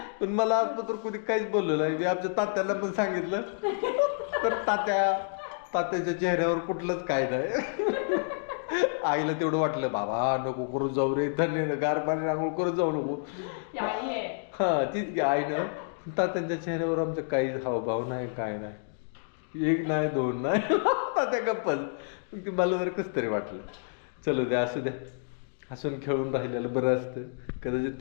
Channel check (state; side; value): silent; right; digital silence